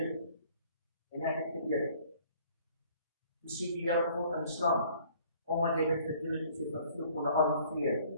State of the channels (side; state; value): both; inverted; correlation -0.56